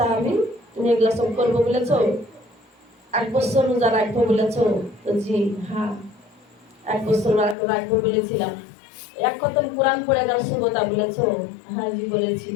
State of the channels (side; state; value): right; drops out; at 7.6 s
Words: তুমি এগুলা সব করবো বলেছো? 1 বছর রোজা রাখবো বলেছো? তো জি হ্যাঁ, 1 বছর রাখবো বলেছিলাম। 1 খতম কোরআন পড়ে গেল সুবতা বলেছো? হ্যাঁ জি বলেছি।